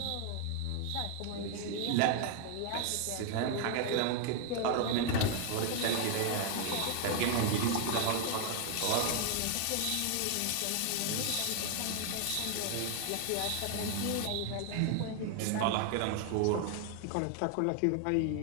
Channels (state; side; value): different; both; correlation 0.00